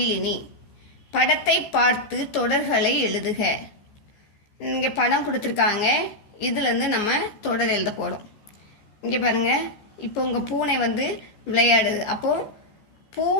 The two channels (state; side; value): late; right; 15 ms